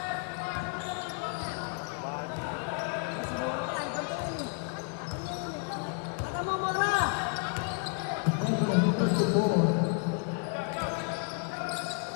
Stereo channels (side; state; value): right; quieter; 38.9 dB